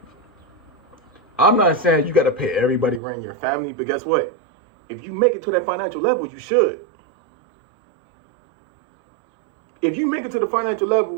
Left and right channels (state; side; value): drops out; left; at 3.0 s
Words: I'm not saying you got to pay everybody rent your family, but guess what? if you make it to that financial level, you should. If you make it to the financial